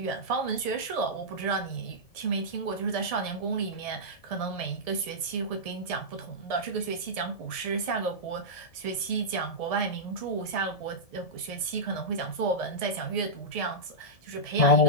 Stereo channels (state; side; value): late; right; 1.7 ms